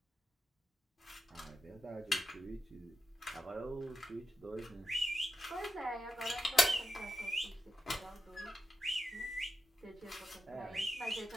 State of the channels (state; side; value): normal; both; correlation 0.88